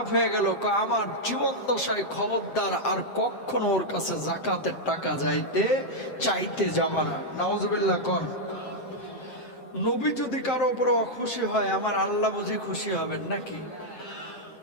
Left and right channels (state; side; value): late; right; 7.6 ms